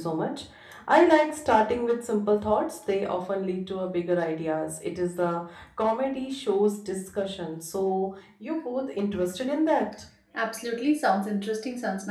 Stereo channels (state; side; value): identical; both; correlation 1.00